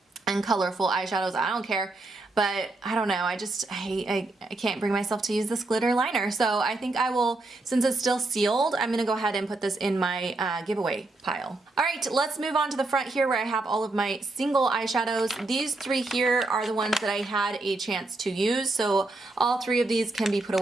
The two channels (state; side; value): quieter; left; 3.1 dB